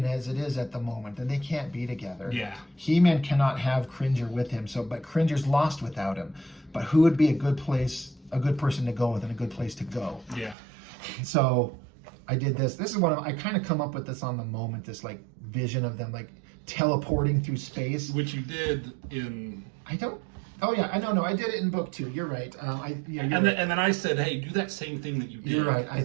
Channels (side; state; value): left; drops out; at 10.6 s